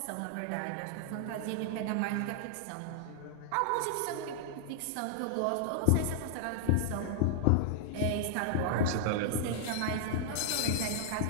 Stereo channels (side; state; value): both; different; correlation -0.01